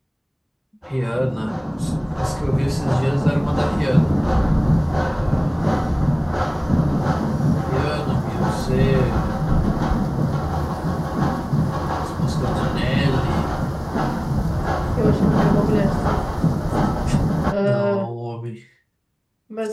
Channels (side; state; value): both; identical; correlation 1.00